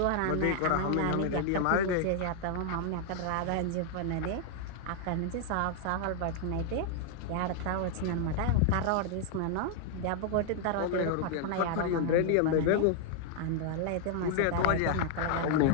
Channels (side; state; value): both; different; correlation 0.00